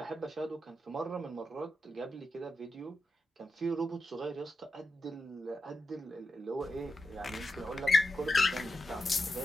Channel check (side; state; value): both; normal; correlation 0.89